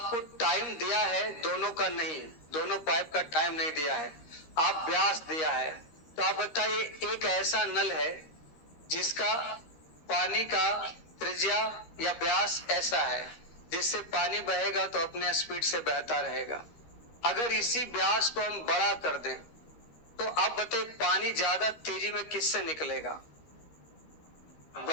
टाइम दिया है दोनों का, नहीं, दोनों पाइप का टाइम नहीं दिया है, आप व्यास दिया है। तो आप बताइए, एक ऐसा नल है जिसका पानी का त्रिज्या या व्यास ऐसा है जिससे पानी बहेगा तो अपने स्पीड से बहता रहेगा। अगर इसी व्यास को हम बड़ा कर दें तो आप बताइए पानी ज्यादा तेजी में किससे निकलेगा?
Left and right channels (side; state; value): right; late; 13 ms